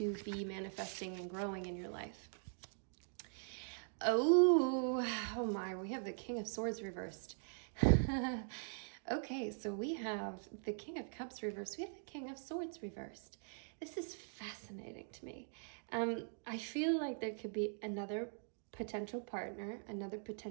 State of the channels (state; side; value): silent; left; digital silence